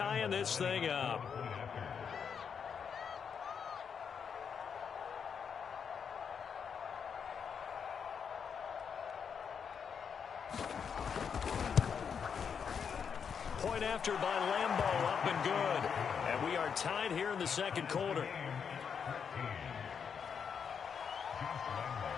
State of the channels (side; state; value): right; quieter; 6.8 dB